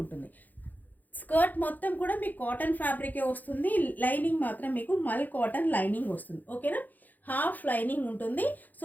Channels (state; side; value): late; right; 0.083 ms